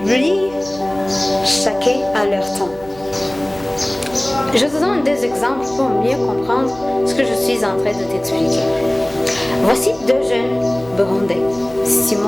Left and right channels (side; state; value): right; noise; hum, 21 dB below the sound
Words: chacun à leur temps. Je te donne des exemples pour mieux comprendre ce que je suis en train de t'expliquer. Voici deux jeunes burundais,